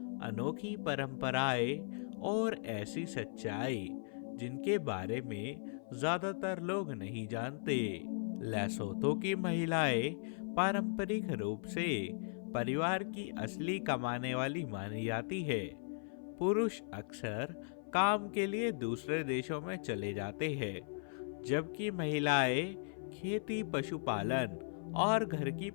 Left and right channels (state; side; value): silent; right; 53 dB below the other